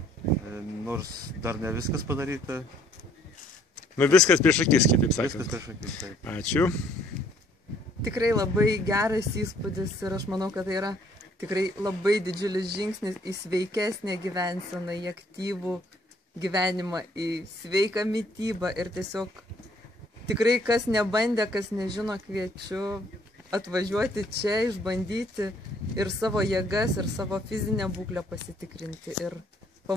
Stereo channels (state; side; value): normal; both; correlation 0.63